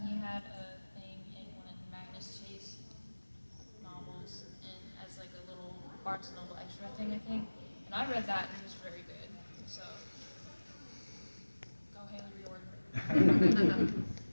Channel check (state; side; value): inverted; both; correlation -1.00